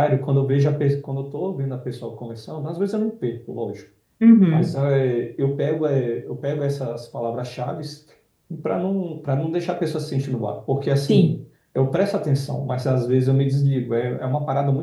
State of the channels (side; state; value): both; identical; correlation 1.00